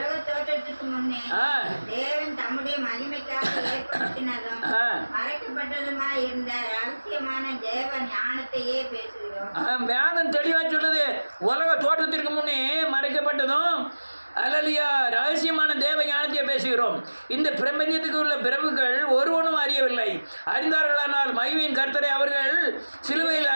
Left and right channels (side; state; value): both; inverted; correlation -1.00